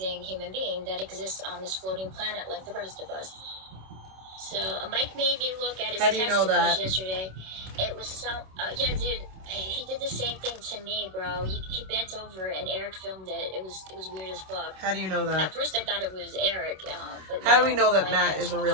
human being that exists on this floating planet like the rest of us. So Mike made me look at his testicles yesterday. It was so... yeah, dude, he did the same thing to me, bro. He bent over and Eric filmed it. It was weird as fuck. How do you know that? At first I thought it was Eric. But how do we know that Matt is a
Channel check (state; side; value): late; left; 27 ms